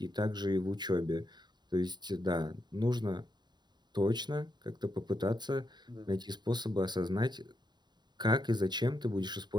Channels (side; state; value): left; late; 0.21 ms